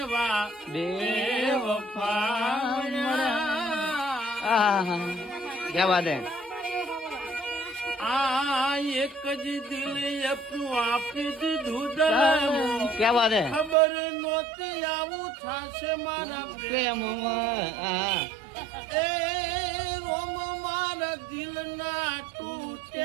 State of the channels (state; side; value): drops out; left; at 13.8 s